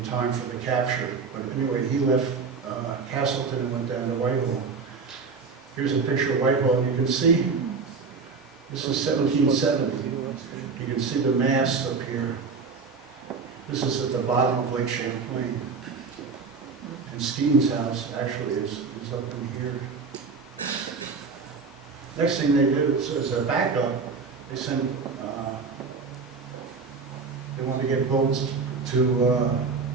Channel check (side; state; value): left; quieter; 4.9 dB